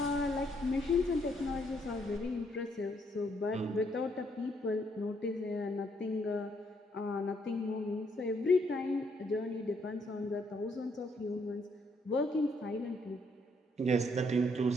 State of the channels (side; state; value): both; normal; correlation 0.71